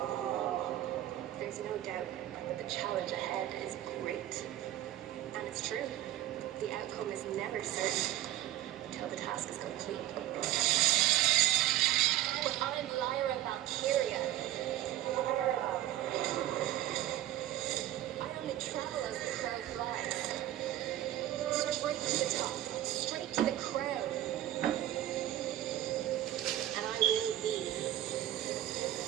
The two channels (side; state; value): left; quieter; 13.7 dB